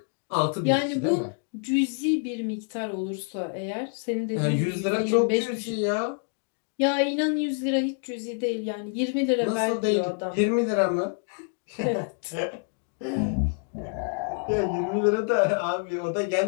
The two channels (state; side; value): quieter; right; 39.2 dB